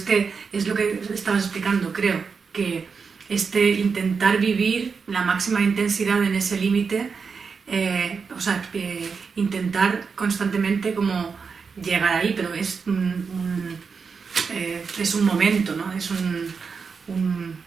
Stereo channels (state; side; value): quieter; left; 5.4 dB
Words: lo que estabas explicando, creo, que intentar vivir la máxima intensidad en ese límite, intentar constantemente como llegar ahí, pero es un momento, ¿no? Es un